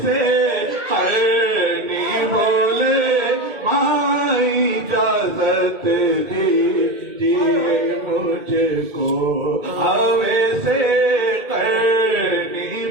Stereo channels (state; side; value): late; left; 2.3 ms